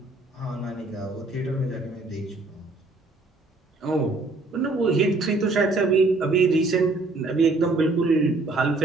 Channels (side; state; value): left; quieter; 3.3 dB